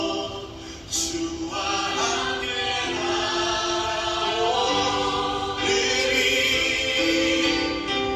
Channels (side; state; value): left; noise; rumble, 30 dB below the sound